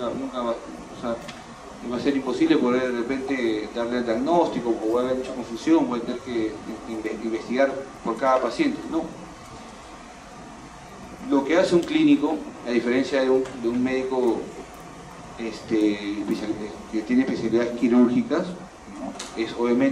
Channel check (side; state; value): both; identical; correlation 1.00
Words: va, o sea, va a ser imposible poder de repente darle el diagnóstico, o va a haber mucha confusión, voy a tener que investigar por cada paciente. No. Lo que hace un clínico, a diferencia de un médico que tiene especialidades quirúrgicas, ¿no? Es